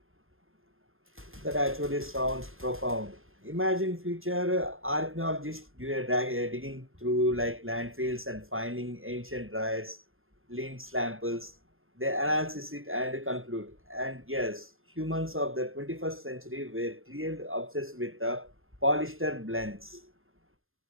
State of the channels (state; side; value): late; left; 0.60 ms